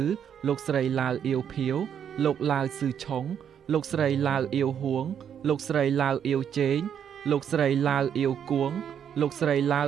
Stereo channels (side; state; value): left; quieter; 8.5 dB